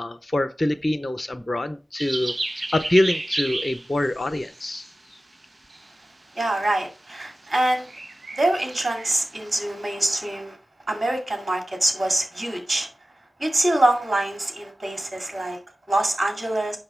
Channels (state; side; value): normal; both; correlation 0.95